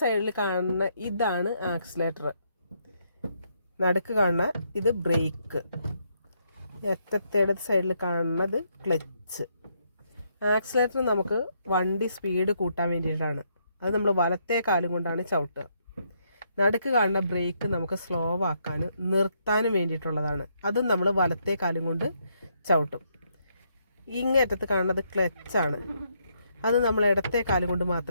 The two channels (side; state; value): both; inverted; correlation -0.75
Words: സൈഡിൽ കാണുന്ന ഇതാണ് ആക്സിലേറ്റർ, നടുക്ക് കാണുന്ന ഇത് ബ്രേക്ക്, അറ്റത്തേടെ സൈഡിൽ കാണുന്നത് ക്ലച്ച്. ആക്സിലേറ്റർ നമുക്ക് വണ്ടി സ്പീഡ് കൂട്ടാൻ വേണ്ടിയിട്ടാണ്. അത് നമ്മൾ വലത്തെ കാലും കൊണ്ടാണ് ചവിട്ടുക. നടുക്ക് കാണുന്ന ബ്രേക്ക് നമുക്ക് സ്ലോ ആക്കാനും നിർത്താനും വേണ്ടിയിട്ടുള്ളതാണ്. അതും നമ്മൾ വലത്തെ കാലും കൊണ്ട് ചവിട്ടും. ഇങ്ങേറ്റത്ത് കാണുന്നത് ക്ലച്ചാണ്. അത് നമ്മൾ ഇടത്തെ കാലും കൊണ്ട്